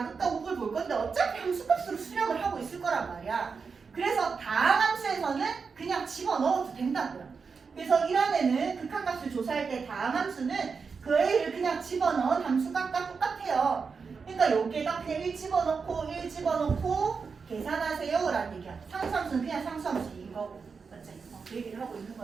우극을 볼 건데 어차피 함수값으로 수렴을 하고 있을 거란 말이야. 그래서 다항함수에서는 그냥 집어넣어도 된다고요. 그래서 1원에는 극한값을 조사할 때 다항함수는 그 A를 그냥 집어넣은 함수값과 똑같아요. 그러니까 여기에다 그냥 1 집어넣고 계산하세요 라는 얘기야. 상수함수는 그냥 상수함수인 거고. 맞지? 그 얘기를 하고 있는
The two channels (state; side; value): quieter; left; 5.3 dB